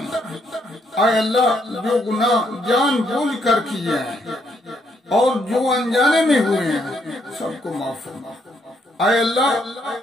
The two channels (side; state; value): both; normal; correlation 0.74